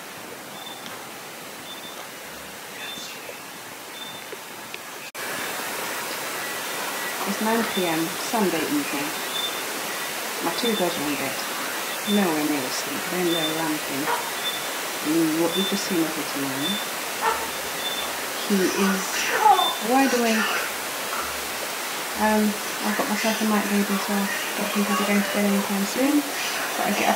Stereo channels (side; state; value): both; identical; correlation 1.00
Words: It's 9 p.m. Sunday evening. My 2 girls are in bed. Nowhere near asleep. They're in there ramping. What you've just seen of it tonight. He is wide awake. I've got myself a night baby, so I don't think I'll be going to bed anytime soon. But I get